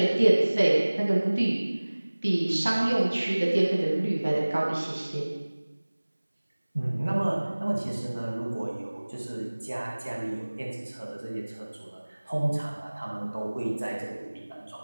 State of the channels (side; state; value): both; inverted; correlation -1.00